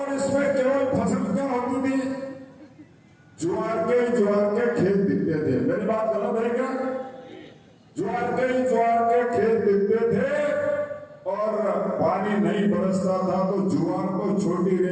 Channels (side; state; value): both; identical; correlation 1.00